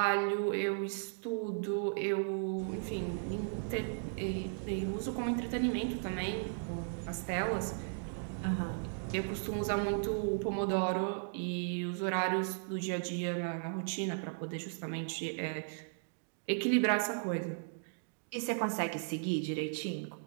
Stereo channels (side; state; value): left; silent; digital silence